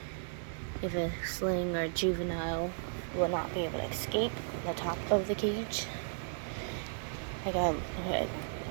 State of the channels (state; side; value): silent; left; digital silence